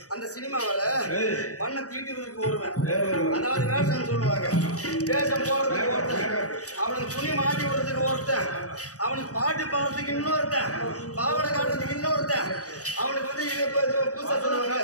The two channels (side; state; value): right; late; 0.66 ms